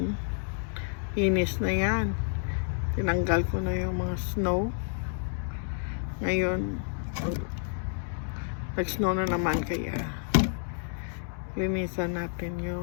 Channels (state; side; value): silent; right; digital silence